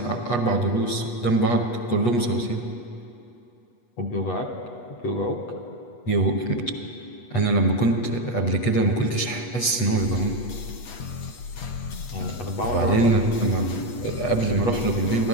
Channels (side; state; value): right; late; 8.2 ms